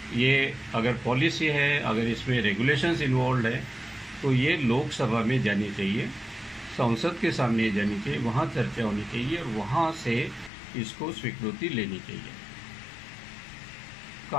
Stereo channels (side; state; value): right; drops out; at 10.5 s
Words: ये अगर पॉलिसी है, अगर इसमें रेगुलेशंस इन्वॉल्व है, तो ये लोकसभा में जानी चाहिए, संसद के सामने जानी चाहिए, वहाँ चर्चा होनी चाहिए और वहाँ से इसको स्वीकृति लेनी चाहिए